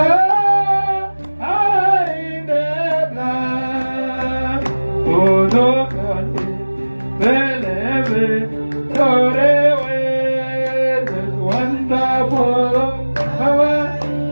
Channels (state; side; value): inverted; both; correlation -1.00